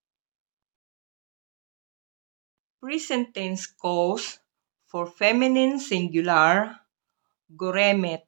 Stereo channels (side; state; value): left; silent; digital silence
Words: Present tense cause for feminine singular, goremet.